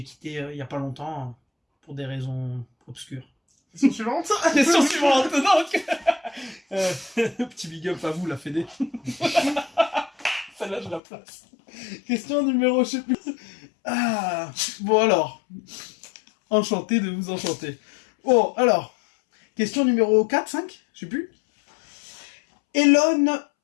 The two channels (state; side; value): drops out; right; at 11.0 s